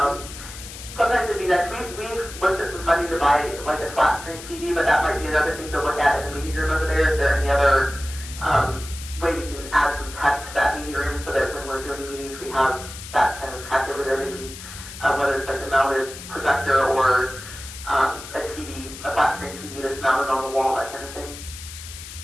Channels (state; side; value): noise; left; hiss, 13 dB below the sound